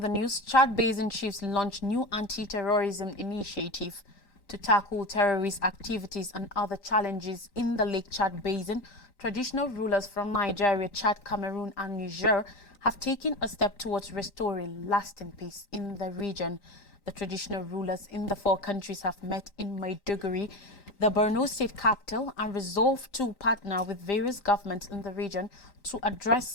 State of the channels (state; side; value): late; right; 3.9 ms